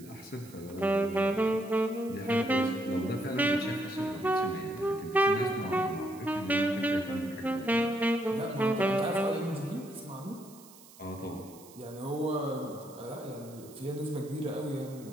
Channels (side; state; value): right; noise; hiss, 22 dB below the sound